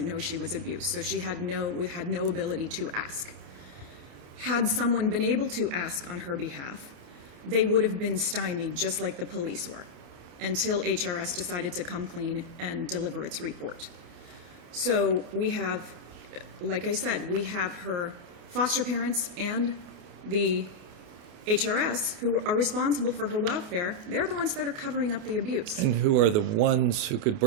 know she was abused, so she had no ability to ask. Had someone been able to ask on her behalf, they would have been stymied just like the police were until HRS decided to come clean and deliver its report. So we have, like I said, we have her foster parents and the HRS who are responsible for her welfare. They're the ones that are covering up the abuse. And who are the ones who could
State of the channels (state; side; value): late; left; 28 ms